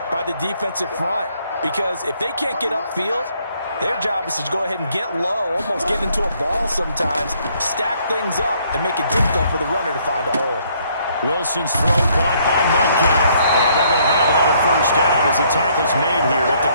by the defensive front because if they can't get upfield, their job is to go ahead and get low, almost get into a ball sometimes, stack things up, and make it difficult for the runner to find a hole. Wilson's throw caught by Metcalf. And they're going to have another first down as the tackle's made here at the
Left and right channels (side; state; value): both; inverted; correlation -0.67